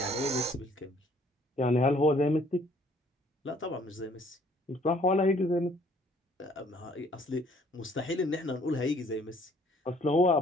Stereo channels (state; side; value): normal; both; correlation 0.60